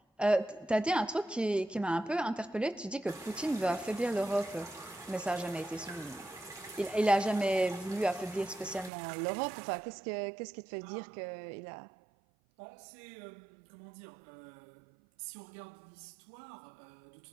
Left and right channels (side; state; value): left; drops out; at 8.9 s